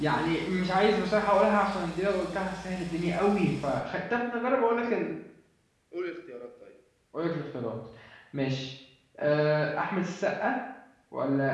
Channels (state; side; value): identical; both; correlation 1.00